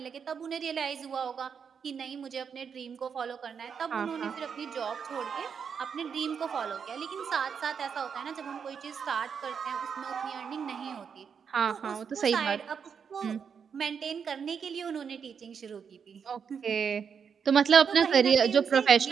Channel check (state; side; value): quieter; left; 6.8 dB